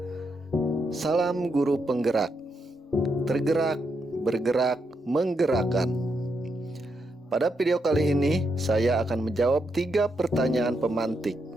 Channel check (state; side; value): normal; both; correlation 0.81